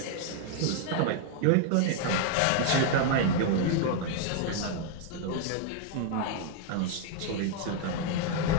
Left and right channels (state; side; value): different; both; correlation 0.00